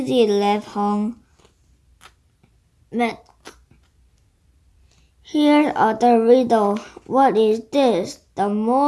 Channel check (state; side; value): identical; both; correlation 1.00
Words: laughed Hong. But here's other riddle. What is this? The